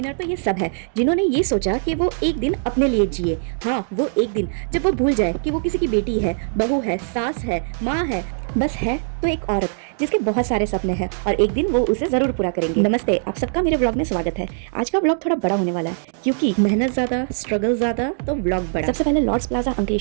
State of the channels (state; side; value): silent; left; digital silence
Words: तो ये सब है जिन्होंने ये सोचा कि वो एक दिन अपने लिए जिए। हाँ, वो एक दिन जब वो भूल जाए कि वो किसी की बेटी है, बहू है, सास है, माँ है, बस है तो एक औरत जिसके बहुत सारे सपने हैं और एक दिन वो उसे जरूर पूरा करेंगे। नमस्ते, आप सबका मेरे व्लॉग में स्वागत है। आज का व्लॉग थोड़ा बड़ा होने वाला है क्योंकि मेहनत ज्यादा, स्ट्रगल ज्यादा तो व्लॉग बड़ा। सबसे पहले लॉर्ड्स प्लाजा